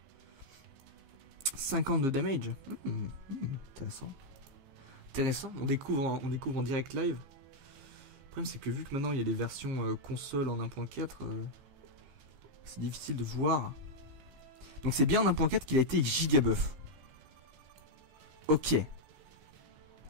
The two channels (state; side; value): late; left; 15 ms